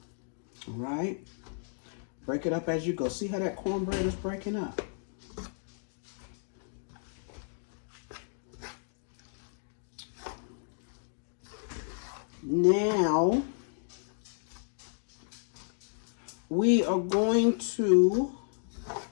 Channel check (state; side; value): silent; right; digital silence